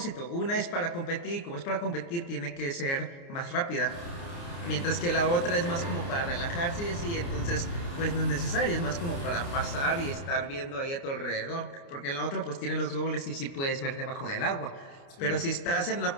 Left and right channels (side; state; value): right; late; 29 ms